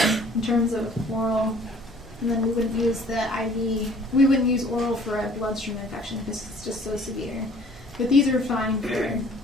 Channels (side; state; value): both; normal; correlation 0.54